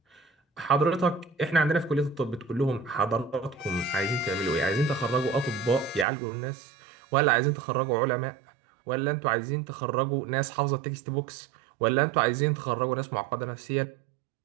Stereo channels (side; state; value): left; drops out; at 6.1 s